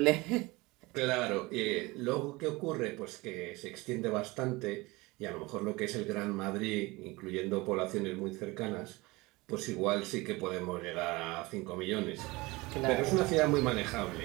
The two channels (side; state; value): left; quieter; 22.7 dB